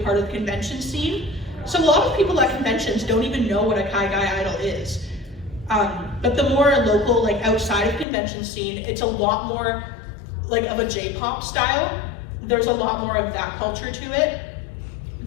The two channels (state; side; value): drops out; right; at 8.1 s